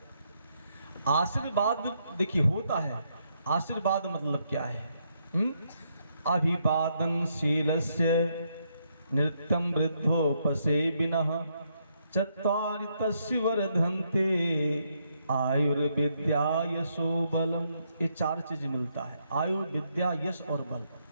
आशीर्वाद देखिए होता है, आशीर्वाद मतलब क्या है? अभिवादन शीलस्य नृत्यं वृद्धोपसेविनः चत्वारि तस्य वर्धन्ते आयुर्विद्या यशो बलम। ये चार चीज मिलता है, आयु विद्या यश और बल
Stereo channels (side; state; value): both; inverted; correlation -0.76